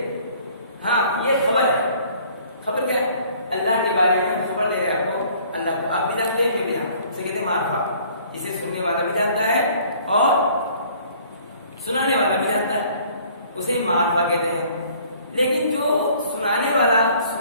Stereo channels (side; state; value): both; inverted; correlation -0.55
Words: हाँ ये खबर है। खबर क्या है? अल्लाह के बारे में खबर दे रहे हैं आपको, अल्लाह को आप भी जानते हैं, मैं भी जानता हूं, इसे कहते हैं मारफा। इसे सुनने वाला भी जानता है और सुनाने वाला भी जानता है, उसे मारफा कहते हैं। लेकिन जो सुनाने वाला